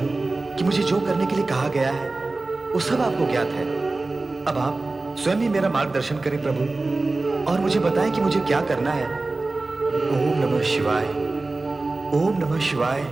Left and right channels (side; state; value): left; quieter; 3.3 dB